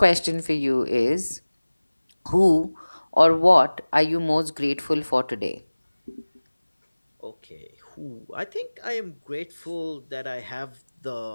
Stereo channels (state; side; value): inverted; both; correlation -1.00